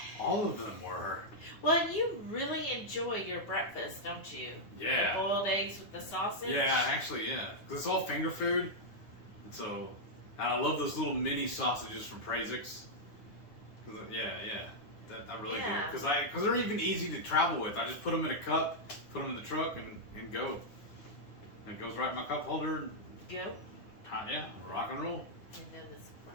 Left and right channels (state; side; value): late; right; 9.4 ms